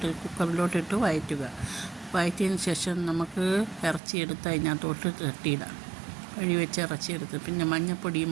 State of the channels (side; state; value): left; drops out; at 4.0 s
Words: കുക്കറിലോട്ടിട്ട് വഴറ്റിയതിന് ശേഷം നമുക്ക് ഇറച്ചിയെടുത്ത് അതിനകത്തോട്ട് തട്ടിയിടാം. വെച്ച ഇറച്ചിയെടുത്ത് പിന്നെ